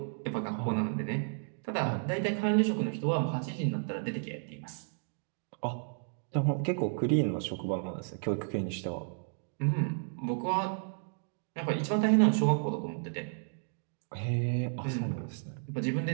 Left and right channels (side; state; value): left; silent; digital silence